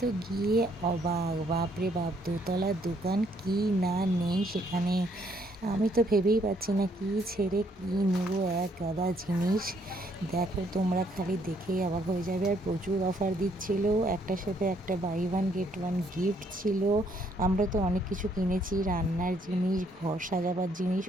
তো গিয়ে অবাক, বাপরে বাপ, দোতলার দোকান কি না নেই সেখানে। আমি তো ভেবেই পাচ্ছি না কি ছেড়ে কি নেব, এক গাদা জিনিস। দেখো তোমরা, খালি দেখেই অবাক হয়ে যাবে। আর প্রচুর অফার দিচ্ছিল, একটার সাথে একটা buy one get one gift ছিল। আমরা তো অনেক কিছু কিনেছি, রান্নার জিনিস, ঘর সাজাবার জিনিস,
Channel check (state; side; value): normal; both; correlation 0.69